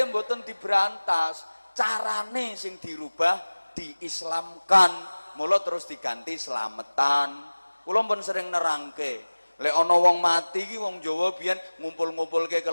mboten diberantas. Carane sing dirubah, diislamkan. Mula terus diganti slametan. Kula pun sering nerangke, lek ana wong mati iki wong Jawa biyen ngumpul-ngumpulke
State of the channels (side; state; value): both; inverted; correlation -1.00